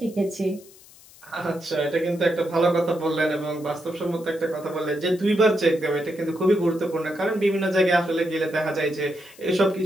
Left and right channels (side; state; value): left; noise; hiss, 23 dB below the sound